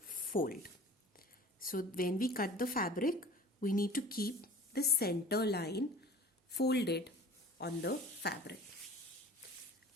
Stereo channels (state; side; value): normal; both; correlation 0.43